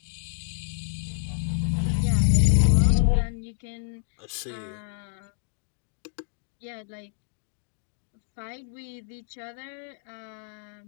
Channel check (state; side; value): silent; right; digital silence